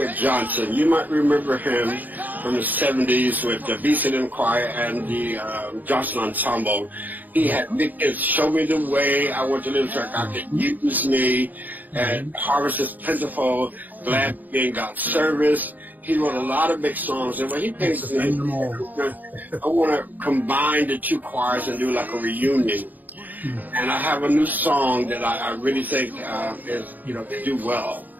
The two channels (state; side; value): late; left; 0.083 ms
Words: Johnson. You might remember him from the 70s with the BCM Choir and the Johnson Ensemble. He had big hits, Show Me the Way, I Want to Live so God Can Use Me, and Harvest is Plentiful, Glad to Be in God's Service. He wrote a lot of big songs, and when he came to me, I want to combine the two choirs and do like a reunion. And I have a new song that I really think is, to do well.